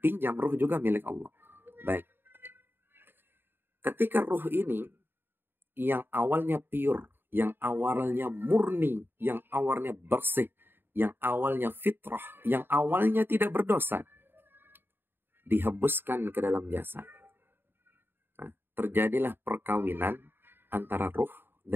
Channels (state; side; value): late; left; 0.10 ms